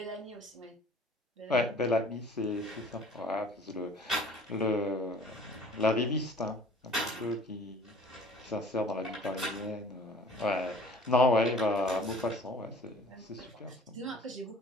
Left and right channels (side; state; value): both; normal; correlation 0.48